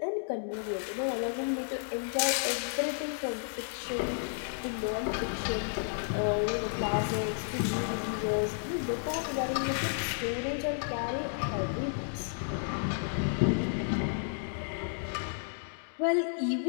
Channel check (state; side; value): silent; right; digital silence